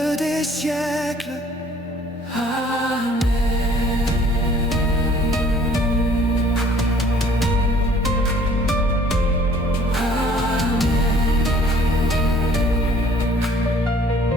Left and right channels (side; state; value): both; normal; correlation 0.56